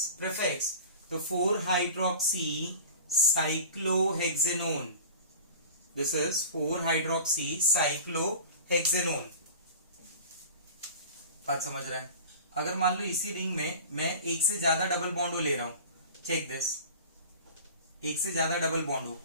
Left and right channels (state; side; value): inverted; both; correlation -0.37